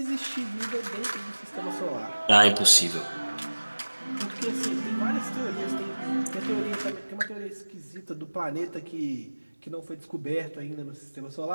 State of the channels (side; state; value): both; inverted; correlation -1.00